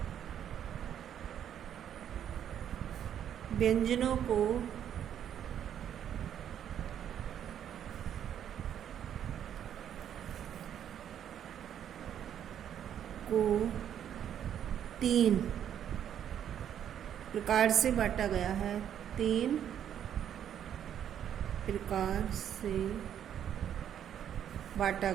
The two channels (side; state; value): left; quieter; 9.6 dB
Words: व्यंजनों को को 3 प्रकार से बांटा गया है। 3 प्रकार से बांटा